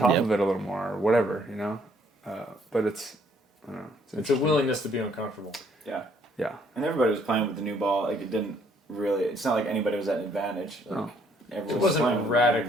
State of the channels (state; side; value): normal; both; correlation 0.65